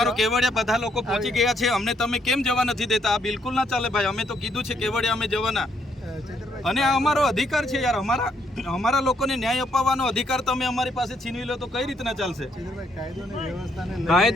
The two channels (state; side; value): normal; both; correlation 0.73